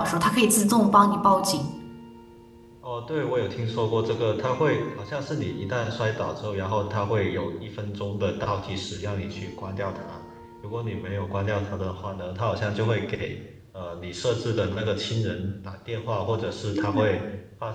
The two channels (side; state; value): both; identical; correlation 1.00